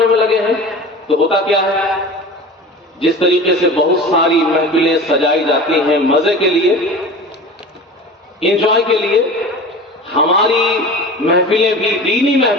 میں لگے ہیں. تو ہوتا کیا ہے؟ جس طریقے سے بہت ساری محفلیں سجائی جاتی ہیں مزے کے لیے, انجوائے کے لیے, ہماری محفلیں بھی, دینی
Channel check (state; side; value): normal; both; correlation 0.35